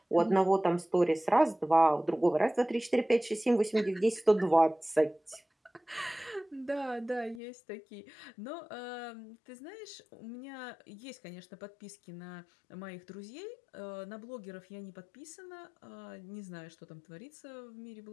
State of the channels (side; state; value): right; drops out; at 7.4 s